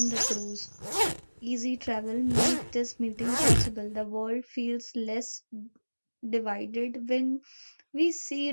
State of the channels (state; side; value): inverted; both; correlation -1.00